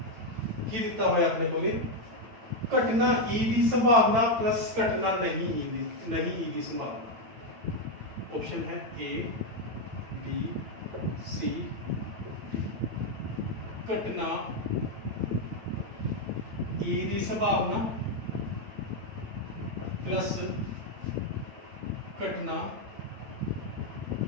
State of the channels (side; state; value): left; late; 9.0 ms